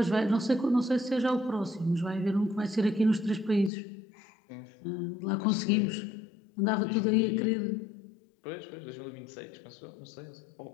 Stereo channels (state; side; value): drops out; right; at 3.7 s